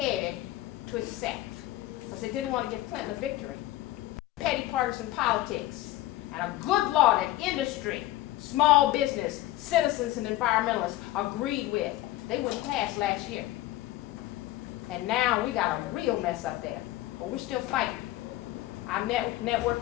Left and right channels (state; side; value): quieter; right; 16.0 dB